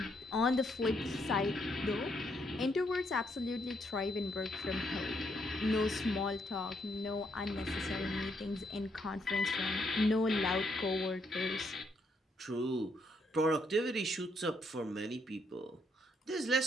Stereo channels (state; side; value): normal; both; correlation 0.74